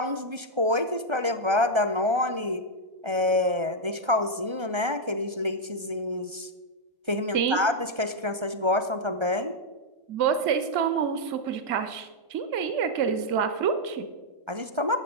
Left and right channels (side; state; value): left; late; 1.3 ms